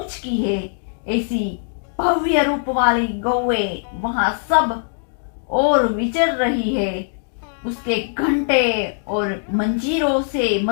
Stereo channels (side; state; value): right; silent; 63 dB below the other